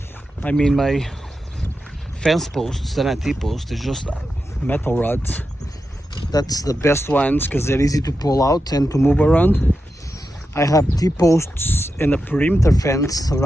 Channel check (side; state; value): both; normal; correlation 0.89